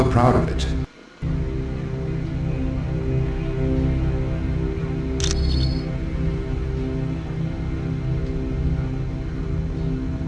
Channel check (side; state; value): both; identical; correlation 1.00